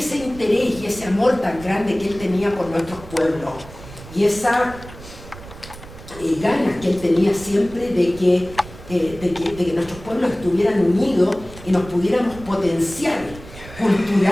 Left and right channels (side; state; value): right; noise; rumble, 16 dB below the sound